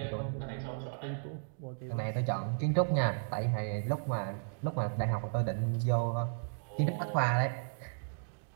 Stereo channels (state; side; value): silent; left; digital silence